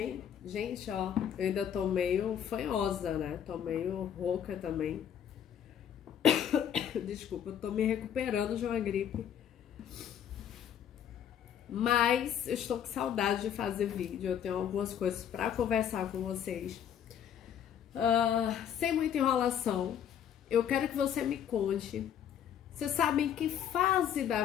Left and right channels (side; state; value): right; quieter; 9.2 dB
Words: Gente, ó, eu ainda tô meio fanhosa, né? Tô meio rouca também. Desculpa, eu tô me recuperando de uma gripe. Mas eu estou com saudade de fazer vídeo. Eu tenho algumas coisas pra conversar com vocês. Sem muita enrolação. Eu quero que você me conte. Você sabe em que fase da